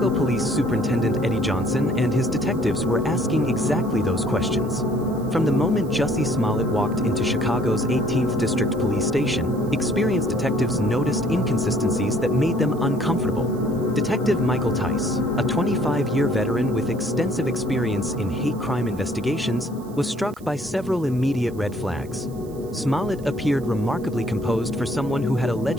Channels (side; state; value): right; noise; hiss, 25 dB below the sound